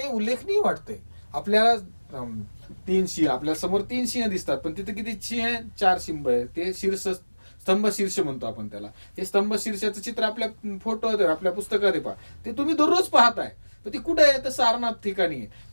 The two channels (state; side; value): inverted; both; correlation -1.00